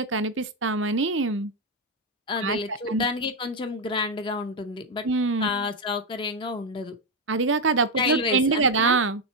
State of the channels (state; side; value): normal; both; correlation 0.05